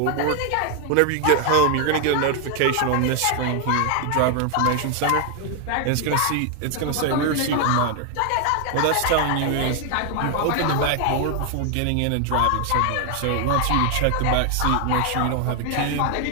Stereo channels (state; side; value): different; both; correlation 0.00